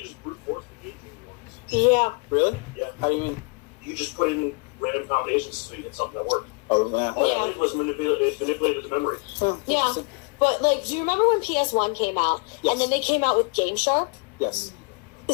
just brute force the Game Genie ones. Yeah. Really? Yeah. How do you mean? You just put in random combinations to get something that worked. Oh, yeah. All it was manipulated the memory. Yeah. But, do you remember when PS1 came out? Yes. And then they came out with Game Shark? Yes.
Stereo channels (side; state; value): right; quieter; 31.9 dB